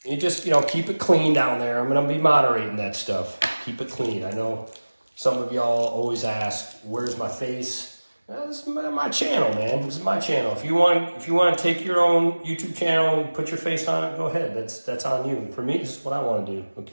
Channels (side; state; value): both; inverted; correlation -1.00